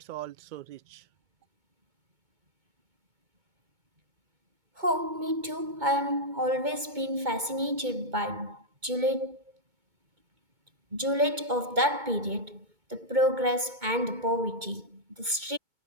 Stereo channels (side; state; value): left; late; 2.2 ms